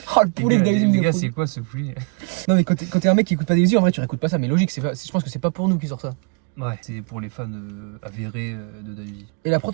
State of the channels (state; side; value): quieter; left; 35.9 dB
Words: oh le poulet de Dahuzi. Les gars, c'est quoi ce poulet? Non mais quand t'es un mec qui écoute pas Dahuzi, en vrai tu réécoutes pas ça, mais logique, je pense que c'est pas pour nous qui sort ça. Ouais, c'est pour les fans avérés de Dahuzi. Et la prod,